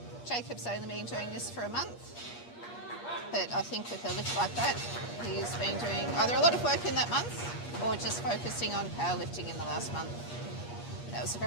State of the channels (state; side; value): late; right; 8.4 ms